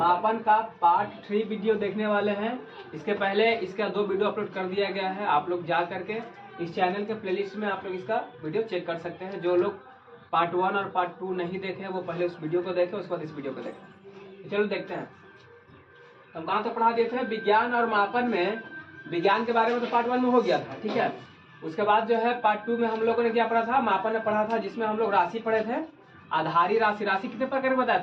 का पार्ट 3 वीडियो देखने वाले हैं। इसके पहले इसका 2 वीडियो अपलोड कर दिया गया है। आप लोग जा करके इस चैनल के प्लेलिस्ट में आप लोग इसका वीडियो चेक कर सकते हैं। जो लोग पार्ट 1 और पार्ट 2 नहीं देखे वो पहले उस वीडियो को देखें, उसके बाद इस वीडियो को देखें। चलो देखते हैं हम कहाँ तक पढ़ा दिए थे। विज्ञान और मापन में विज्ञान के बारे में तो पार्ट 1 में हो गया था, ठीक है। उसके बाद जो है पार्ट 2 में हम लोगों ने क्या पढ़ा था, मापन में पढ़ा था, जिसमें हम लोग राशि पढ़े थे। आधारी राशि, राशि कितने प्रकार के बताए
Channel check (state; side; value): identical; both; correlation 1.00